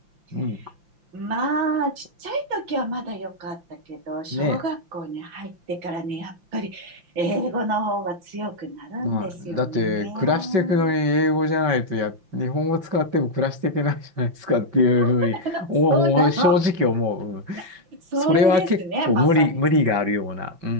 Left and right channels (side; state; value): left; late; 5.8 ms